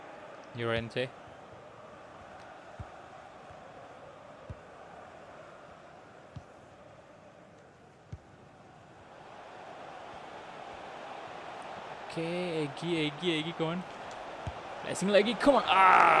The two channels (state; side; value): identical; both; correlation 1.00